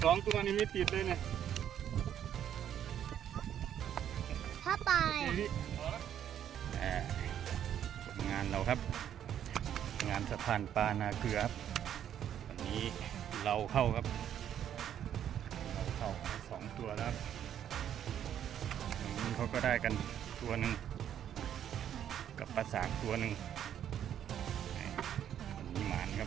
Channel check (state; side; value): quieter; left; 10.0 dB